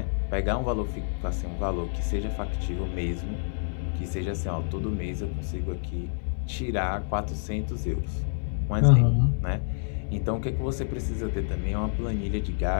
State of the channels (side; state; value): right; silent; 59 dB below the other